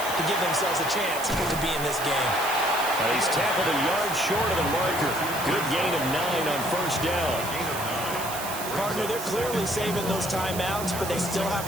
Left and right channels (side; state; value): right; noise; hiss, 8 dB below the sound